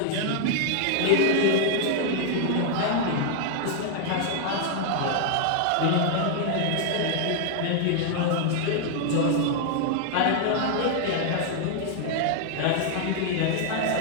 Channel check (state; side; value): different; both; correlation 0.00